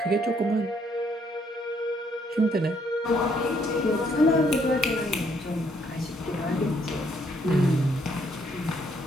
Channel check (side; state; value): both; normal; correlation 0.69